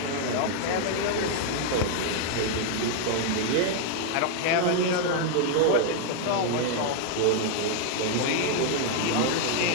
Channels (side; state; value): both; different; correlation 0.00